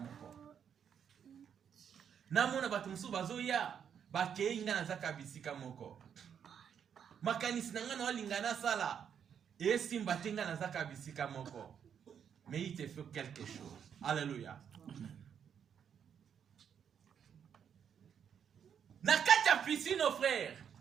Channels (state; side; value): quieter; left; 8.0 dB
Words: Na mona batu musuba zoya. Bake nga na zaka bisika moko. Makanisi na nga na walingana sala. Et si mbatenga na zaka bisika moko. Mais il te fait quelque chose. Alléluia. Na kati ya piscine, nos frères.